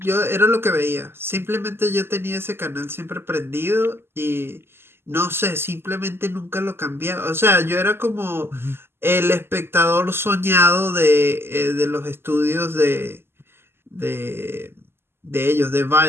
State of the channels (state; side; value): late; left; 0.12 ms